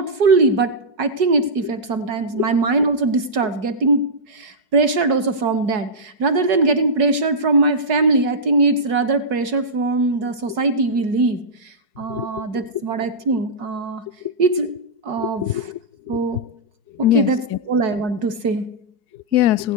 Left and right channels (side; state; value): left; late; 4.7 ms